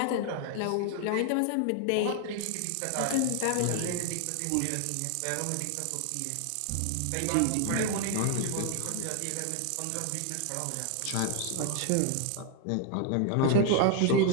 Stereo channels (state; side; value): different; both; correlation 0.00